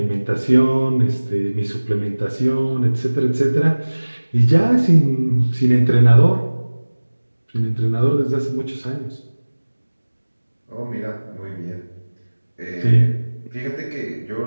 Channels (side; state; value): both; inverted; correlation -1.00